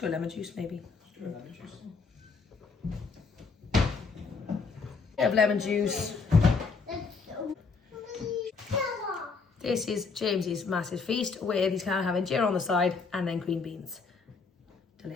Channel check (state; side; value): quieter; right; 4.7 dB